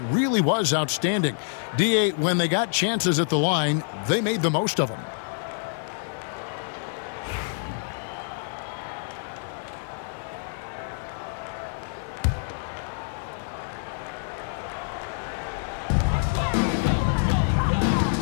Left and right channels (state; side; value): silent; right; digital silence